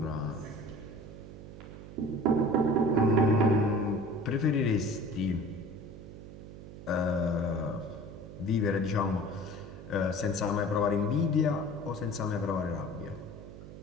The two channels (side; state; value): right; noise; hum, 14 dB below the sound